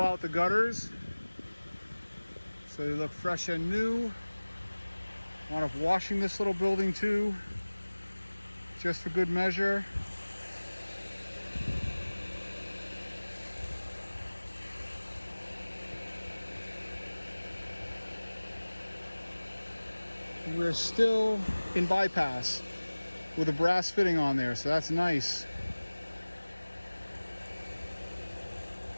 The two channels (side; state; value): both; inverted; correlation -1.00